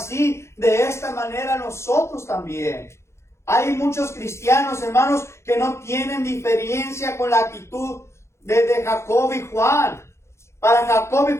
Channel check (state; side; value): late; right; 0.13 ms